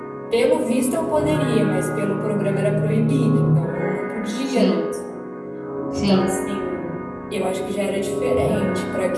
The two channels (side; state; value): both; identical; correlation 1.00